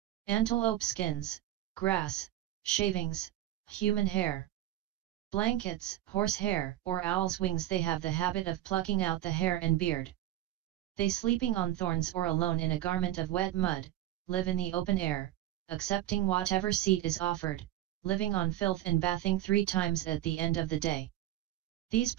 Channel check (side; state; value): left; quieter; 14.7 dB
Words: antelope skins, grass, shavings, human hair, blankets, horse hair, or owl's wings. They have the habit of plucking out the hair and beard. They sleeping on thorns or alone in a garment of wet mud, live in the open air, accepting whatever seat is offered, living on filth and bathing 3 times at the end of the day. These